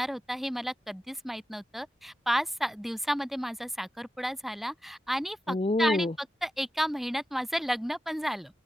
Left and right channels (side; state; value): both; normal; correlation 0.91